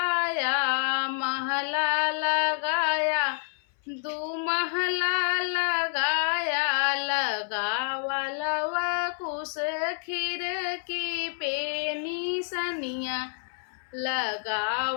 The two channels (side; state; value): right; silent; 59 dB below the other